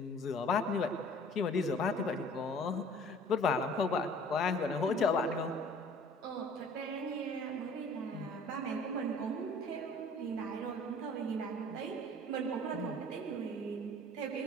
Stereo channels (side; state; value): both; normal; correlation 0.51